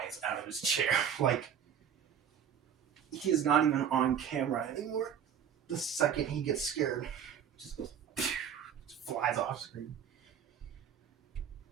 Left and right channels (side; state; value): left; quieter; 8.4 dB